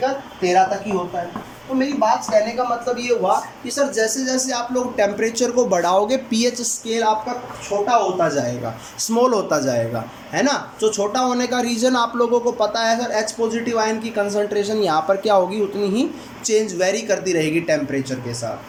13 तक ही होता है। तो मेरी बात कहने का मतलब ये हुआ कि सर जैसे जैसे आप लोग टेम्परेचर को बढ़ाओगे पीएच स्केल आपका छोटा होता जाएगा, स्मॉल होता जाएगा, है ना। जो छोटा होने का रीज़न आप लोगों को पता है सर, H पॉजिटिव आयन की कंसंट्रेशन यहाँ पर क्या होगी? उतनी ही चेंज वेरी करती रहेगी टेम्परेचर के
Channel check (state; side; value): identical; both; correlation 1.00